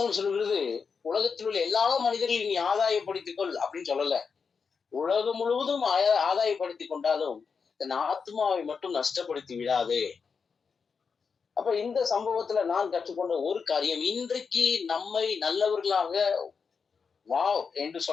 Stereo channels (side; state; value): right; quieter; 5.6 dB